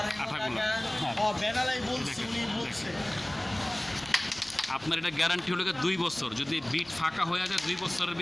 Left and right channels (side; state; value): left; noise; hum, 29 dB below the sound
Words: আঠাগুলো। আপনার এটা গ্যারান্টি হলো 2 বছর। যদি বিট ফাঁকা হয়ে যায় 2 বছরের